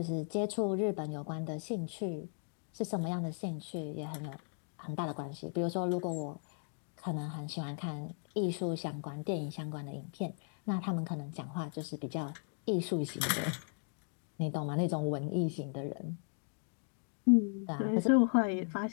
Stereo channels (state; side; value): silent; right; 53 dB below the other